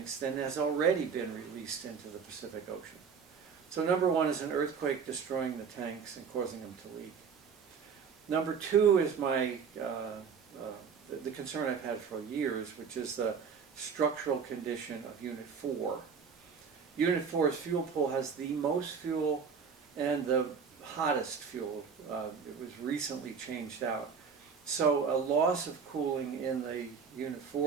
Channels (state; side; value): quieter; left; 6.2 dB